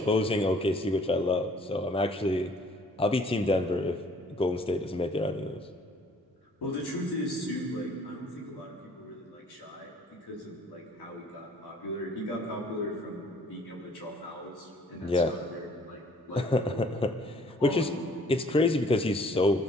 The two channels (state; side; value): normal; both; correlation 0.57